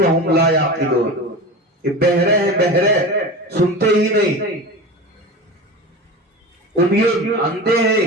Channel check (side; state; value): both; normal; correlation 0.29